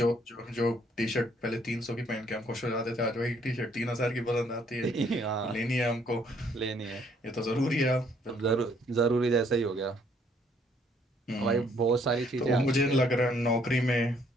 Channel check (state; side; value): normal; both; correlation 0.66